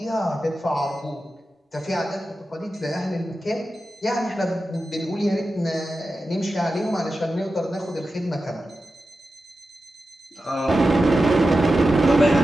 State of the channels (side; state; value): both; normal; correlation 0.92